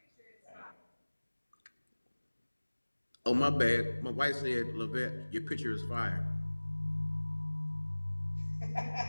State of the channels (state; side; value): inverted; both; correlation -1.00